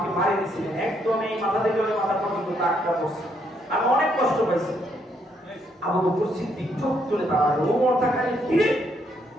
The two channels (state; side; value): normal; both; correlation 0.73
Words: মারি দিয়েছিলেন, একদম এই মাথা থেকে ওই মাথা পর্যন্ত দাগটা পড়ছে, আমি অনেক কষ্ট পাইছি। আবু বকর সিদ্দিক চোখ তুলে তাকালো, ওমর তাকালে, কি রে